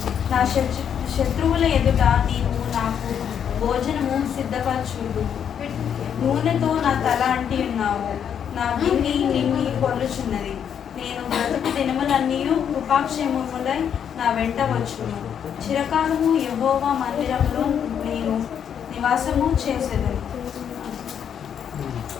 నా శత్రువుల ఎదుట నీవు నాకు భోజనము సిద్ధపరచుదు. నూనెతో నా తల అంటి ఉన్నావు, నా బిన్ని నిన్ని పొర్లుచున్నది. నేను బ్రతుకు దినములన్నీ కృపాక్షేమములై నా వెంట వచ్చును. చిరకాలము యెహోవా మందిరంలో నేను నివాసము చేసేదను.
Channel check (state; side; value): quieter; right; 8.4 dB